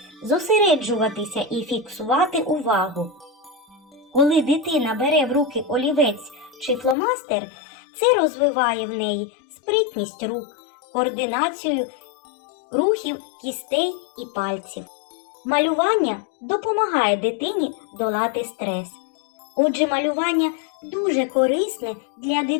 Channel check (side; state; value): right; drops out; at 7.0 s